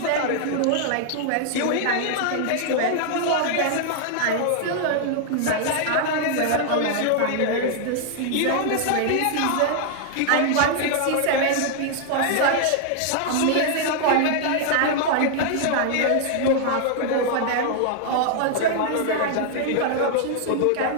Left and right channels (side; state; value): both; different; correlation -0.01